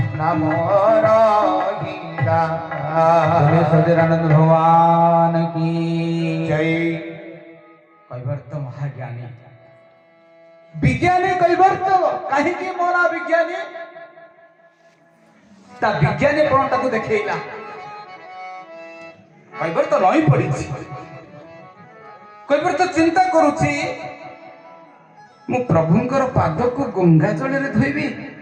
নামর গীতা बोले सच्चिदानंद भगवान की জয়। কৈবর্ত মহাজ্ঞানী বিজ্ঞানী কৈবর্ত কাহিকি মোনা বিজ্ঞানী তা বিজ্ঞানী প্রণটাକୁ ଦେଖେଇଲା। কৈবর্ত ରହି ପଡ଼ିଛି। কৈবর্ତ ଚିନ୍ତା କରୁଛି ମୁଁ ପ୍ରଭୁଙ୍କର ପାଦକୁ ଗଙ୍ଗା ଜଳରେ ଧୋଇବି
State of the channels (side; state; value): both; identical; correlation 1.00